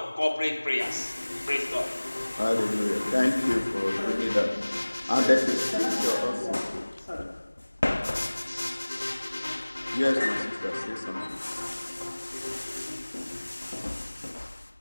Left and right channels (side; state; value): both; inverted; correlation -1.00